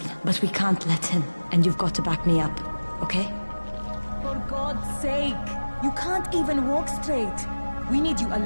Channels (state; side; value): inverted; both; correlation -1.00